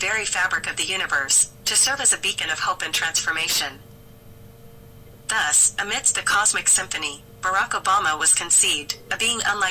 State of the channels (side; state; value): both; identical; correlation 1.00